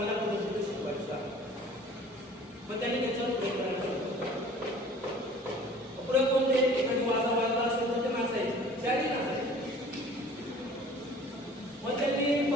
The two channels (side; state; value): both; normal; correlation 0.48